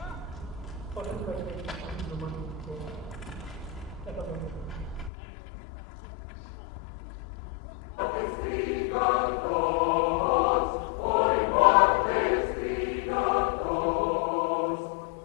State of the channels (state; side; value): drops out; right; at 5.1 s